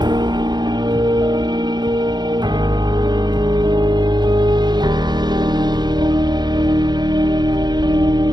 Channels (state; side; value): late; left; 0.21 ms